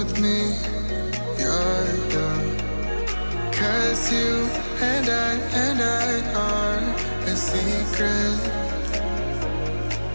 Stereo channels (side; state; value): both; inverted; correlation -1.00